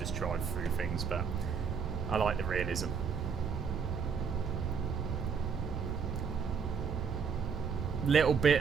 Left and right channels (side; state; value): left; quieter; 6.2 dB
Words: drive through things, but I like the realism. Little